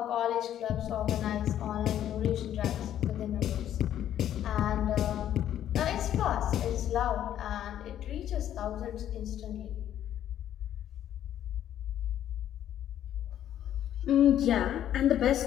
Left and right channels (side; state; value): right; quieter; 11.1 dB